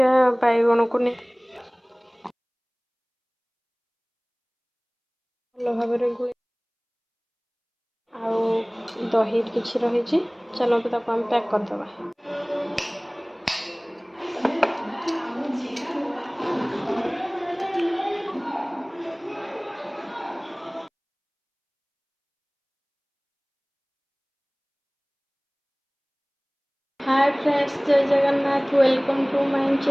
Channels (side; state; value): both; identical; correlation 1.00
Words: बैगण को नहीं भल भाव गुले आउ दही किसी रही। चलतु ताको हम पैक करदे। Hi friends, Jai Jagannath. Welcome to my